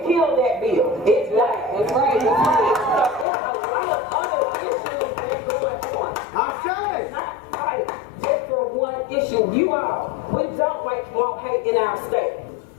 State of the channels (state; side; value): drops out; right; at 3.2 s